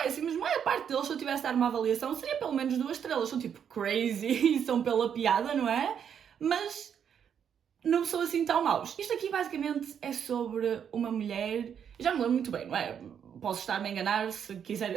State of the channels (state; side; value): quieter; left; 8.2 dB